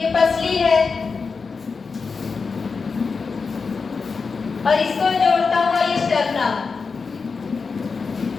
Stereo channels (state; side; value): quieter; right; 4.9 dB